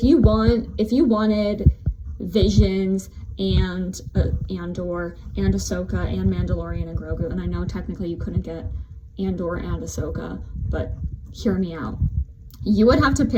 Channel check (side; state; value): both; identical; correlation 1.00